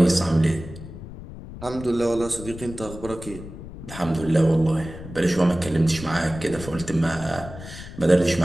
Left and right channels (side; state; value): left; noise; rumble, 13 dB below the sound